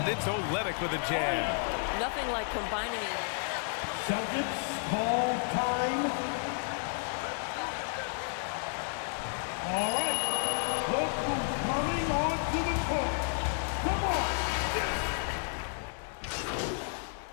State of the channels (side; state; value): right; silent; 57 dB below the other